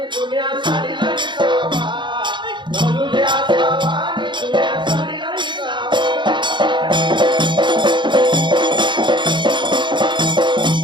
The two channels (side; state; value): left; late; 0.23 ms